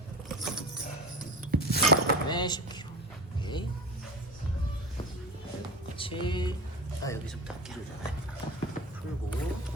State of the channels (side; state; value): both; normal; correlation 0.29